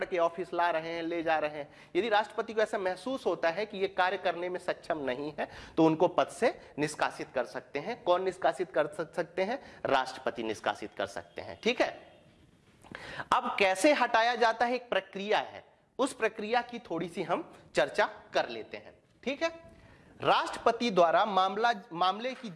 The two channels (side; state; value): both; identical; correlation 1.00